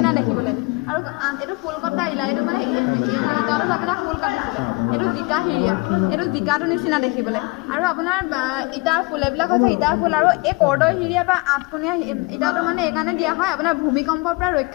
দেখিবলৈ আৰু এইটো ফুল কটা ইলা এইটো মানে ইটাটোত আপোনাৰ ফুল কাটিছিলে এইটো জিকা হিৰিয়া এইটো জিকাটোৰ নিচিনা দেখিবলৈ আৰু আপোনাৰ ইটাৰ ফুল এইবিলাক হৈছে ইটাৰ ফুল আৰু এই কৰ্দৈ হিৰিয়া বা আঠকোণীয়া ইটাটো মানে এইকাৰণে দিয়া হয় আপোনাৰ ভূমিকম্পৰ পৰা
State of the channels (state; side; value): quieter; right; 25.9 dB